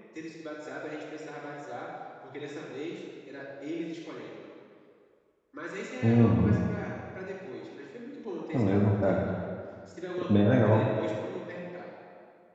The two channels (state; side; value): identical; both; correlation 1.00